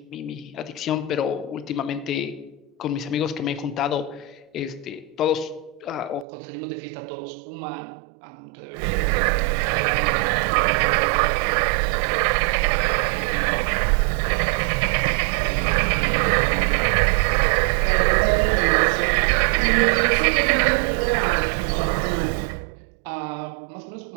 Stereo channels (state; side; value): drops out; left; at 6.2 s